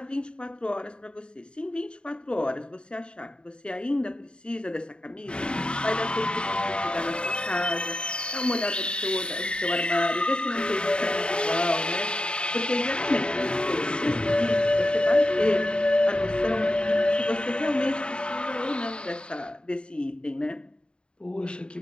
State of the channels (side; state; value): right; late; 0.052 ms